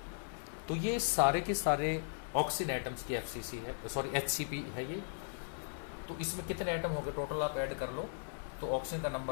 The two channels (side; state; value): right; silent; 53 dB below the other